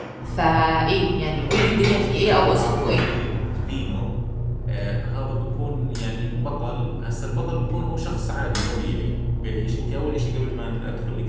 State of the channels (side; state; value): both; identical; correlation 1.00